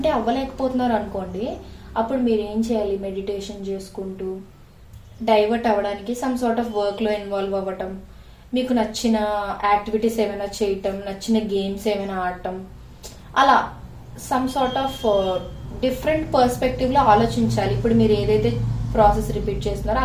అవ్వలేకపోతున్నారు అనుకోండి, అప్పుడు మీరు ఏం చేయాలి? మెడిటేషన్ చేసుకుంటూ డైవర్ట్ అవ్వడానికి సమ్ సార్ట్ ఆఫ్ వర్క్లో ఇన్వాల్వ్ అవ్వటం, మీకు నచ్చిన యాక్టివిటీస్ ఏమైనా చేయటం, నచ్చిన గేమ్స్ ఏమైనా ఆడటం, అలా సమ్ సార్ట్ ఆఫ్ డిఫరెంట్ పర్స్పెక్టివ్లో ఆలోచించాలి. ఇప్పుడు మీరు ఏదైతే ప్రాసెస్ రిపీట్ చేస్తున్నారో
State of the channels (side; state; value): both; identical; correlation 1.00